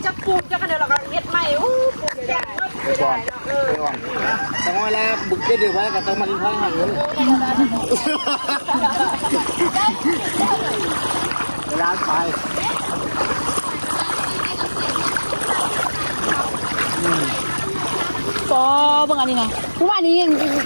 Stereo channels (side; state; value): both; inverted; correlation -1.00